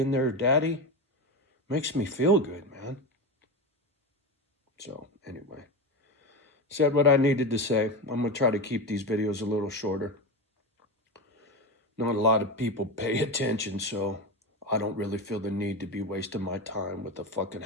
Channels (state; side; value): normal; both; correlation 0.19